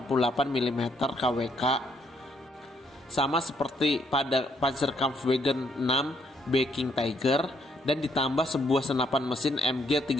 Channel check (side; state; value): both; normal; correlation 0.71